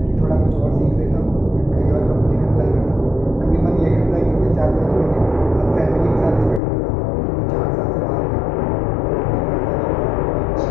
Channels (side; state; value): right; drops out; at 6.6 s